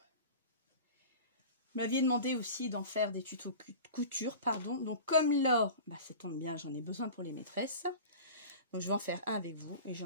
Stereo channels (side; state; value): both; inverted; correlation -0.36